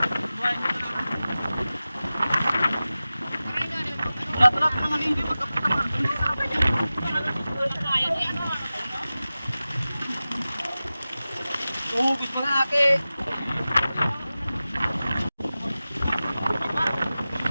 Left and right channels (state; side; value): inverted; both; correlation -0.96